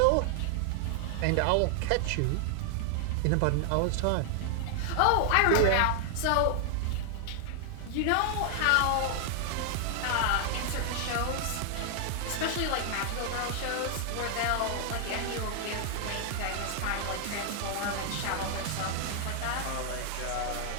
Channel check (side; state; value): both; different; correlation 0.00